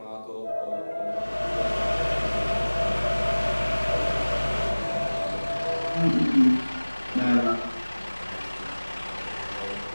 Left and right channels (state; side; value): inverted; both; correlation -1.00